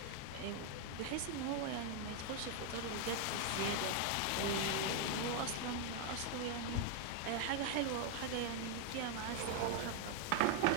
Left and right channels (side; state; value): both; different; correlation 0.00